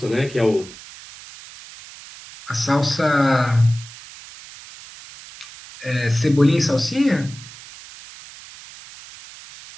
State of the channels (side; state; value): right; noise; hiss, 18 dB below the sound